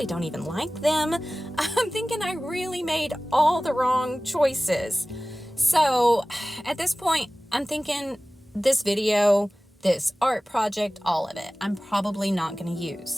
don't even like them. I'm thinking I really made all the wrong choices. So at this point, I'm thinking this video, this art project, all of it, I'm probably not going to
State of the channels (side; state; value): both; normal; correlation 0.98